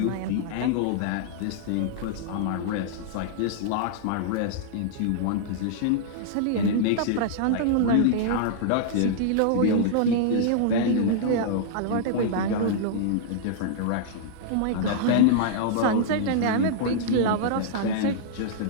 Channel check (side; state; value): both; different; correlation -0.01